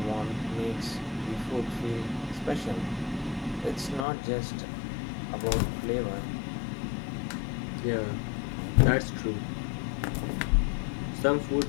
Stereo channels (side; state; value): right; drops out; at 4.0 s